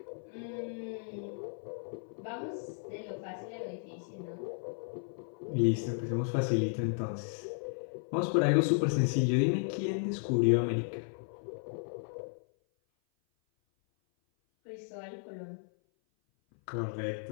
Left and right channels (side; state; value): right; silent; 55 dB below the other